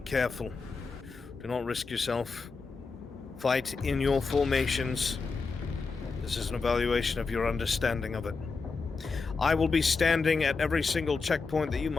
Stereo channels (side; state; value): right; quieter; 4.5 dB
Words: Do not risk yourself. Fight in your formations. This is an evaluation of your understanding of it. I will be standing at every single checkpoint that you